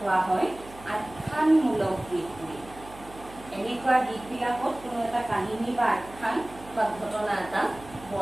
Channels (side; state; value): right; noise; hum, 19 dB below the sound